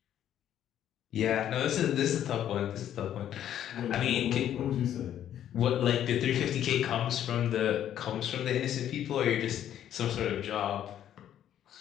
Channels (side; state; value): right; quieter; 10.7 dB